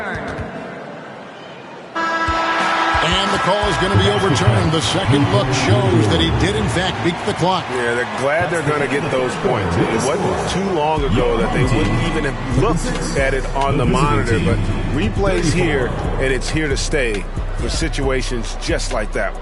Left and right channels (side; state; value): both; identical; correlation 1.00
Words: And the call is going to be overturned. The second look shows that he did, in fact, beat the clock. Yeah, they're glad they're going to get those points. It wasn't too long ago that they wouldn't even have looked at it on the monitor. But replay's here, and it's here to stay for situations just like that